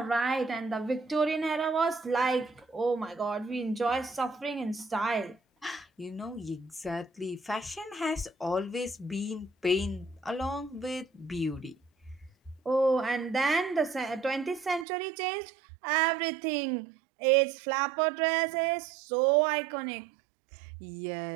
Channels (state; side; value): drops out; left; at 14.9 s